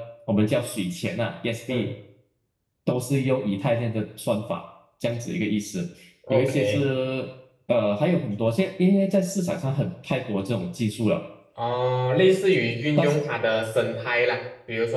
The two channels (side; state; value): both; identical; correlation 1.00